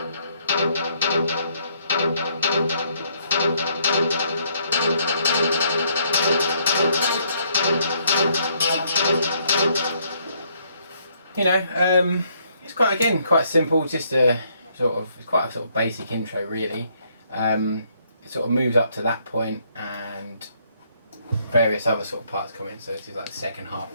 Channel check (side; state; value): both; inverted; correlation -0.69